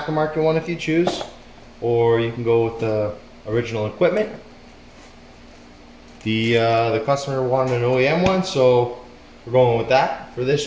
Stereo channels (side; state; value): both; identical; correlation 1.00